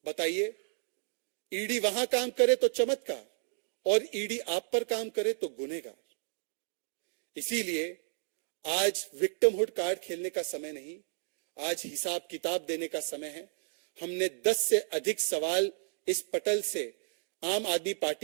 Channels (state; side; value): silent; left; digital silence